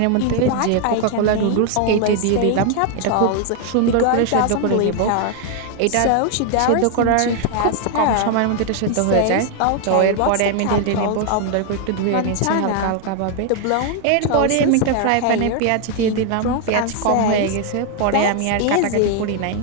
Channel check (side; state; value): both; different; correlation 0.00